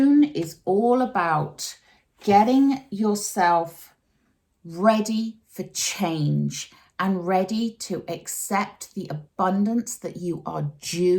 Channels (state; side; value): identical; both; correlation 1.00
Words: is all about getting yourself ready for change and ready to accept the abundance that you are